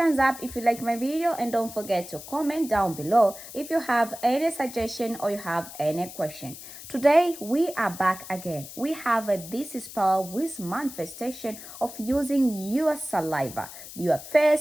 up if you like my video and don't forget to comment down below if you have any suggestion or you have any question. Today we are back again. We have this spell with manifestation of using your saliva, your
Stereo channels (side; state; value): left; noise; hiss, 14 dB below the sound